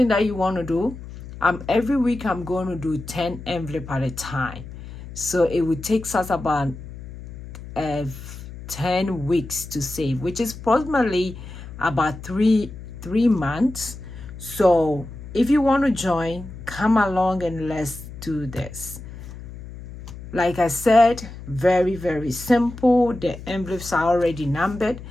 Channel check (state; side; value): noise; left; hum, 13 dB below the sound